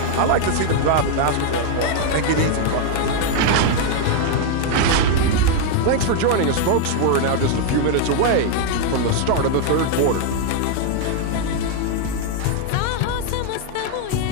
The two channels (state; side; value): different; both; correlation 0.00